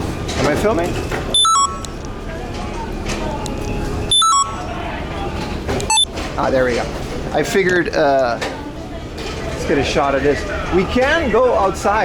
I filming? Ah, there we go. I figured, let's get a shot of this. We can go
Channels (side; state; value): both; identical; correlation 1.00